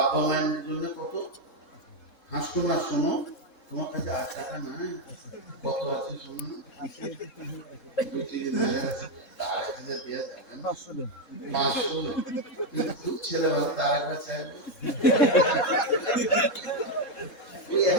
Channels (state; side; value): late; right; 3.7 ms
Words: মায়ের জন্য কত হাসতো না, শোনো তোমার কাছে 8 টাকা নাই, কত আছে শোনো, 1000 দিয়ে যাবেন, 500 খুব ছেলে ভালো, তার একবার চাইবে ওই